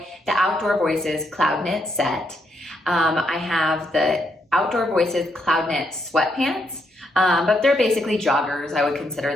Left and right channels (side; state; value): both; normal; correlation 0.77